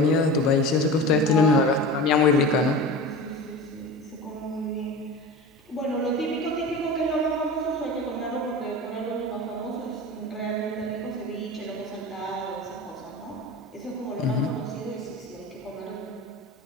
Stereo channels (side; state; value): both; normal; correlation 0.32